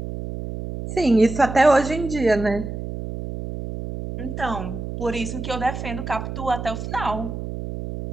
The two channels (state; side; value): noise; right; hum, 7 dB below the sound